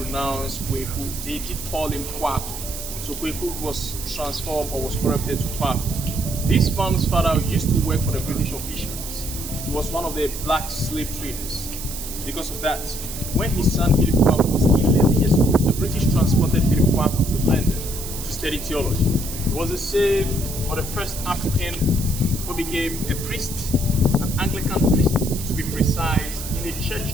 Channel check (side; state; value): right; noise; hiss, 9 dB below the sound